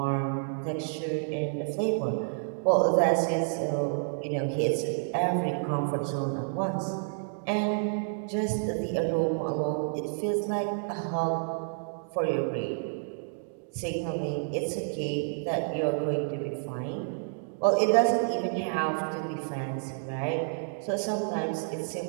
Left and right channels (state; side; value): silent; left; digital silence